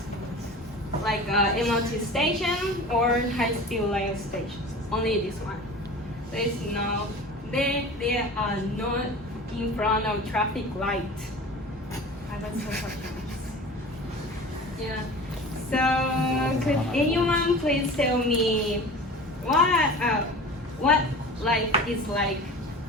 like MRT station or high-speed rail station. Only this one. They are not in front of traffic light. I was so surprised. Yeah. So could anyone please tell me what life is like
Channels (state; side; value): normal; both; correlation 0.37